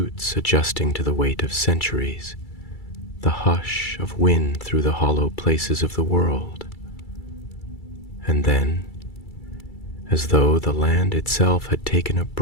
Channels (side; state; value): right; late; 2.3 ms